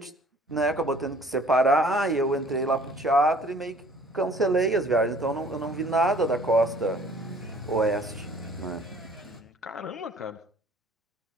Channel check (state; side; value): normal; both; correlation 0.54